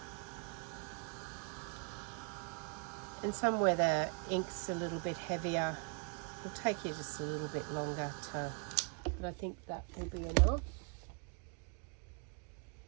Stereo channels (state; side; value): quieter; left; 37.7 dB